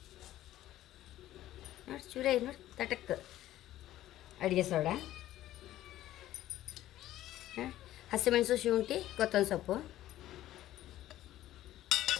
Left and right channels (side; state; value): right; quieter; 13.9 dB